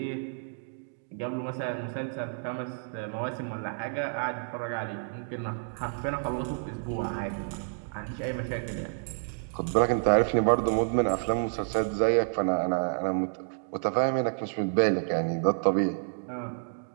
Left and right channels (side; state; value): left; silent; digital silence